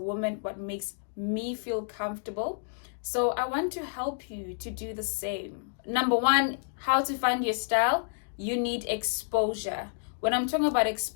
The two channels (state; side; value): silent; right; digital silence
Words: what makes me feel comfortable. So I want to help you to do the same. Number one, how to find your style. You need exposure. When I'm talking about